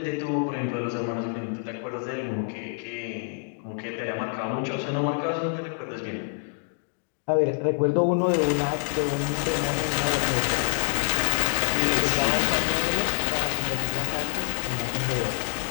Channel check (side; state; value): right; silent; digital silence